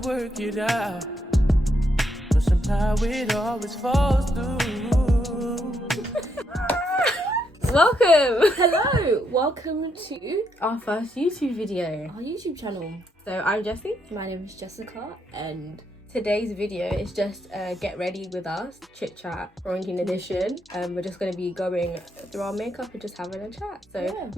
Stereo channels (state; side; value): normal; both; correlation 0.77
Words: to work it out, but somehow it always falls through. Welcome! Hello! Welcome to Our first YouTube video. our YouTube channel. So I'm Jessie. My name is Jessica and Today's video is just get ready with us, chit chat, quarantine edition. We're just going to be going through our makeup and just having a chat. So